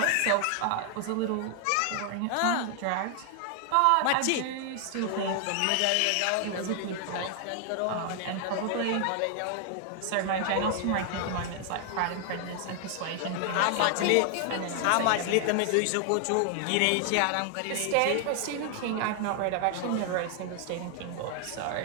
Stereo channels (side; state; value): both; different; correlation 0.00